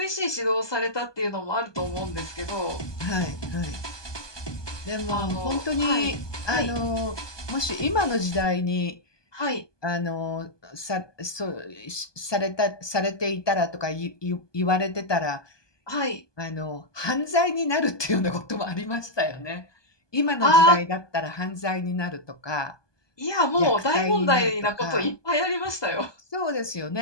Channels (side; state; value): right; late; 1.2 ms